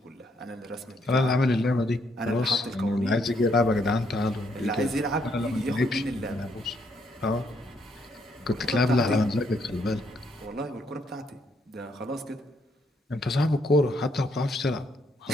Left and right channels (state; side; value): normal; both; correlation 0.73